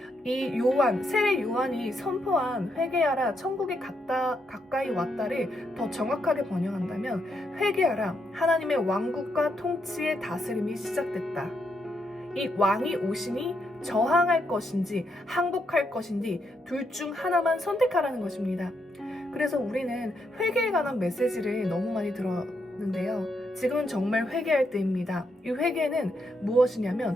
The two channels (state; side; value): normal; both; correlation 0.79